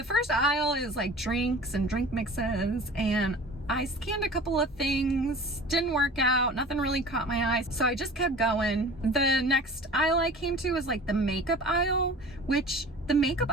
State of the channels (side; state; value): both; normal; correlation 0.41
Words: first aisle is like drinks and drink mixes, and I scanned a couple of things, didn't work out, nothing really caught my eye, so I just kept going. The next aisle I came to was like the makeup aisle, which the makeup